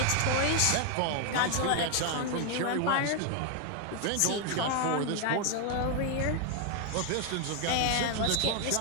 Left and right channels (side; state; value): both; different; correlation 0.00